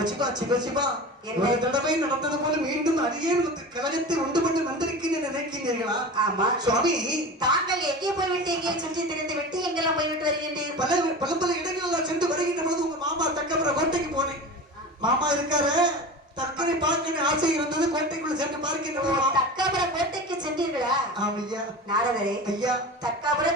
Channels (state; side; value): normal; both; correlation 0.32